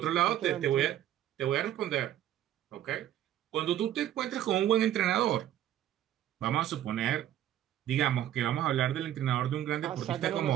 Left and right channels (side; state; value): left; quieter; 11.9 dB